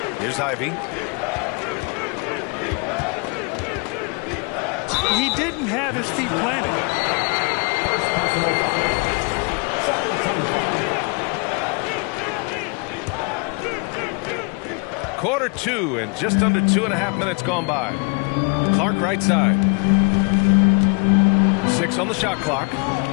Here's Ivy. He didn't have his feet planted. Quarter 2 and just under 2.5 minutes gone by. Clark right side. 6 on the shot clock.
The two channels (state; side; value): quieter; right; 33.3 dB